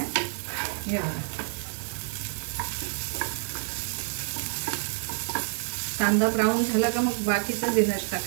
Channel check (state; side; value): silent; left; digital silence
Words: हे बघा कांदा ब्राऊन झाला का मग बाकीचं जिन्नस